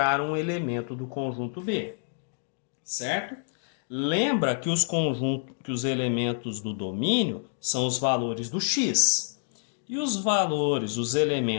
um elemento do conjunto B. Certo? Lembra que os elementos do domínio são os valores do x. E os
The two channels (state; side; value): silent; right; digital silence